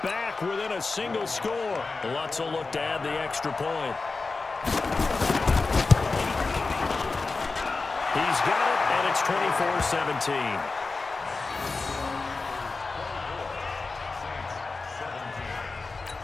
back within a single score. Lutz will look to add the extra point. He's got it, and it's 24-17.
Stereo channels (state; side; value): quieter; right; 3.9 dB